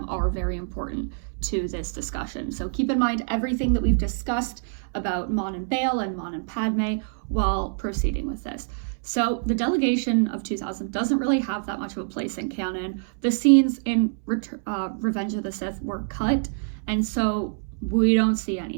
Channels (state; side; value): silent; left; 61 dB below the other